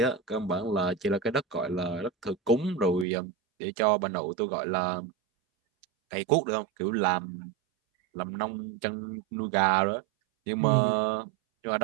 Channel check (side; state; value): left; drops out; at 3.1 s